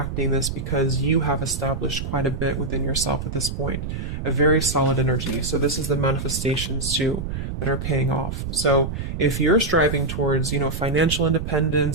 this because you have established quite a bit within yourself at this point. A very solid energy. So this is the manifestations too that are paying off. So if you're striving towards, financial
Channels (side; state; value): right; noise; rumble, 5 dB below the sound